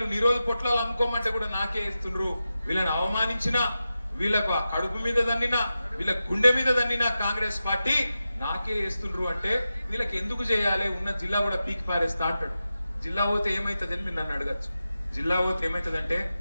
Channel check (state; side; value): inverted; both; correlation -0.92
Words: నిరోధ పొట్లాలు అమ్ముకోమంటే కూడా నాకే వేస్తుండ్రు. వీళ్ళని అవమానించినా, వీళ్ళకు కడుపు మీద దన్నినా, వీళ్ళ గుండె మీద దన్నినా కాంగ్రెస్ పార్టీ నాకే వేస్తుండ్రు అంటే వీళ్ళకి ఎందుకు చేయాలి? ఉన్న జిల్లా కూడా పీకి పారేస్తా అంటాడు. జిల్లా పోతే ఏమైతుందని మీరు నన్ను అడగచ్చు. జిల్లా పోతే ఏమైతుందంటే,